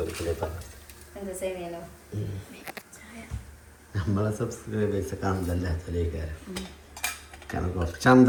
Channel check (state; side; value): identical; both; correlation 1.00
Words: പറഞ്ഞു. നമ്മളെ സബ്സ്ക്രൈബേഴ്സ് കണ്ടല്ലാത്തലേക്കാരം. കാരണം കുറച്ച്